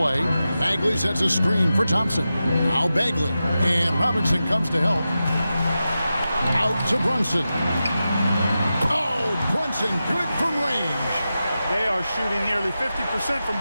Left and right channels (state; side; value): inverted; both; correlation -0.92